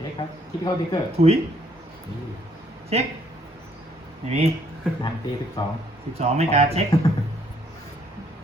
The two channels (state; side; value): normal; both; correlation 0.66